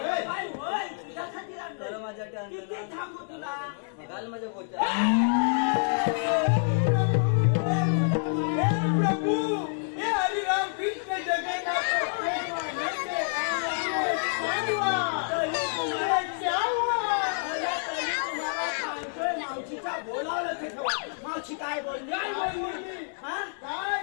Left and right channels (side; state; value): right; silent; digital silence